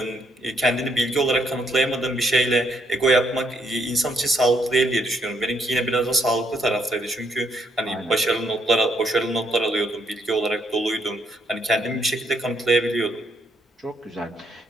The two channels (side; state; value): both; normal; correlation 0.73